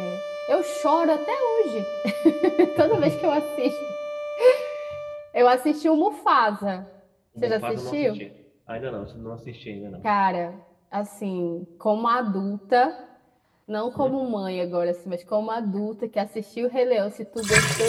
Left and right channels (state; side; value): identical; both; correlation 1.00